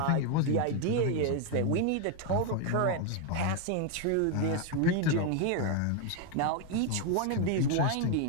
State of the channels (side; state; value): both; different; correlation 0.01